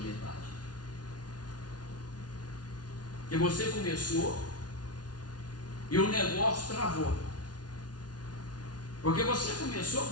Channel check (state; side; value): late; right; 0.69 ms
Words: metade. Que você começou e o negócio travou. Porque você começou